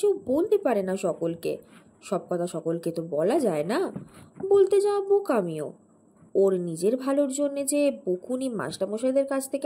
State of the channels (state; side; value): identical; both; correlation 1.00